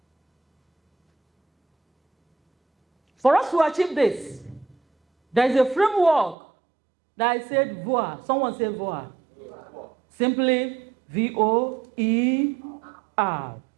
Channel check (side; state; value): left; drops out; at 6.4 s